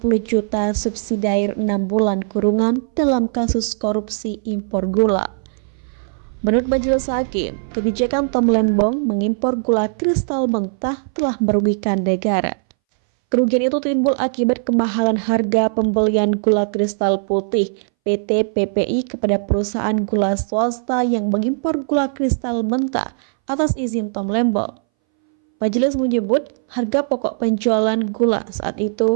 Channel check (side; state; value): left; silent; 63 dB below the other